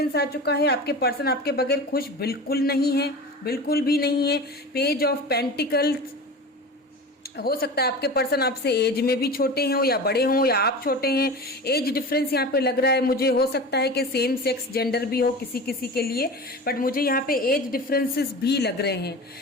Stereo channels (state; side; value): normal; both; correlation 0.32